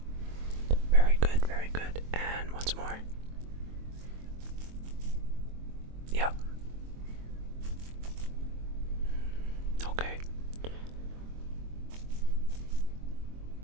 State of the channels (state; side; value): late; left; 23 ms